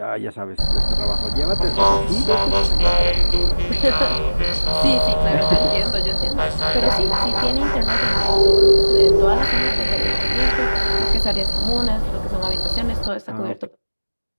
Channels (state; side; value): inverted; both; correlation -1.00